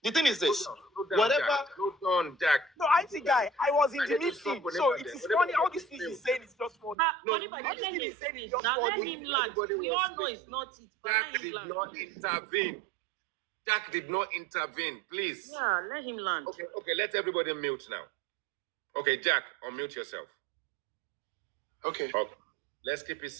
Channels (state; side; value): drops out; left; at 7.0 s